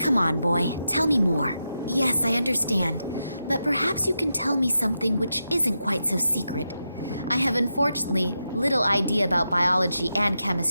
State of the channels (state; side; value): inverted; both; correlation -0.87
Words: on, boy, tell me more. Yes, I understand, but perhaps you can tell me something which isn't quite so secret. I have unfortunately little idea about biology and